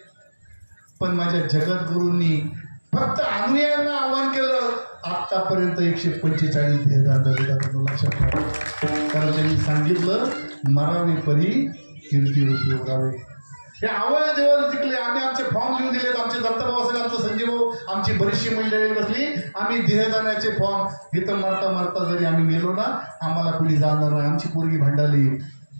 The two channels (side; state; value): both; inverted; correlation -1.00